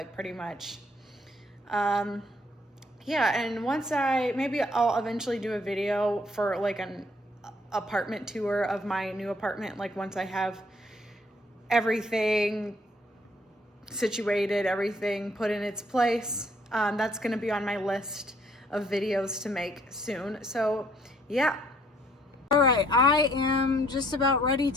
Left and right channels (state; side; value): normal; both; correlation 0.65